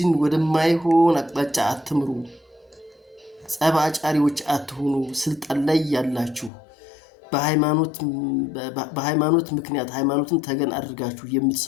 ወደማይሆን አቅጣጫ አትምሩ። ጸብ አጫሪዎች አትሁኑ። ስልጣን ላይ ያላችሁ በሃይማኖት ምክንያት ሃይማኖትን ተገን አድርጋችሁ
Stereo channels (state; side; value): drops out; right; at 6.5 s